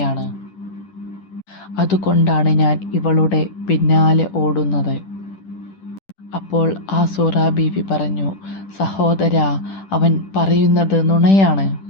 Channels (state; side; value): late; right; 10 ms